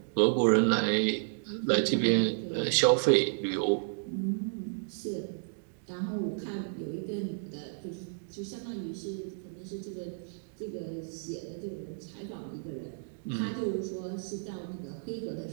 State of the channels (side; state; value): left; silent; digital silence